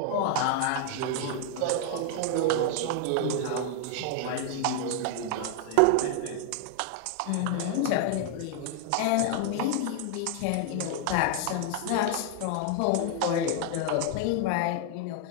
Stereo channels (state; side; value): different; both; correlation 0.00